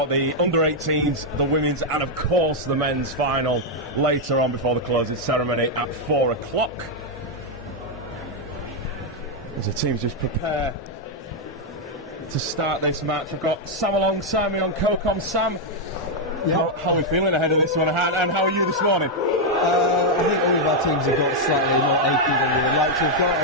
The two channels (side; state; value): both; normal; correlation -0.01